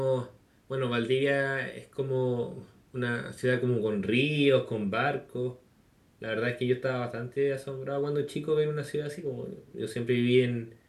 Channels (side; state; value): both; identical; correlation 1.00